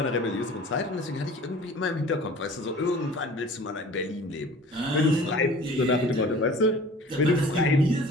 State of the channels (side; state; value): both; normal; correlation 0.45